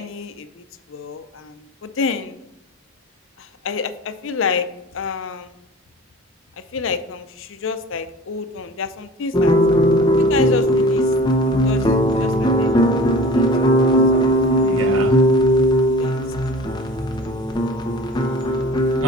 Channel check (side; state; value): both; normal; correlation 0.41